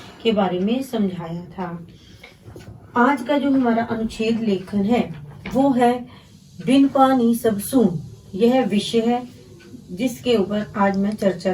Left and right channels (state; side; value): identical; both; correlation 1.00